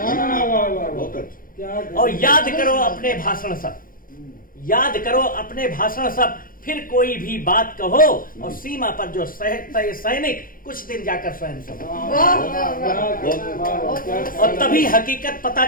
और याद करो अपने भाषण सब, याद करो अपने भाषण सब, फिर कोई भी बात कहो, और सीमा पर जो सैनिक कुछ दिन जाकर स्वयं सो। और तभी हकीकत पता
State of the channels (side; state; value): right; late; 0.41 ms